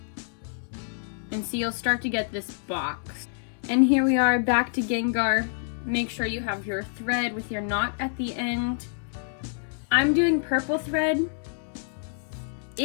And see, you'll start to get this box. And here we are back to Gengar. Make sure you have your thread with your knot at the end. I'm doing purple thread.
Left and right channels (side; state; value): right; silent; 60 dB below the other